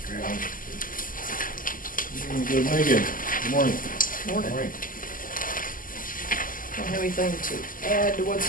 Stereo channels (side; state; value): right; late; 0.40 ms